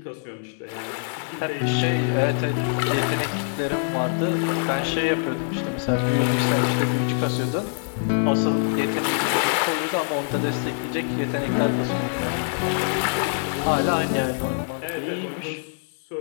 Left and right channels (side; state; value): right; silent; digital silence